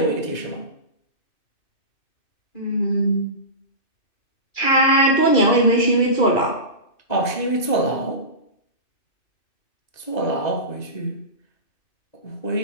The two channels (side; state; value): right; late; 2.4 ms